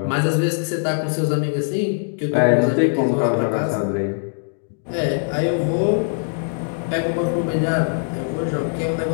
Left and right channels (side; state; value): right; silent; digital silence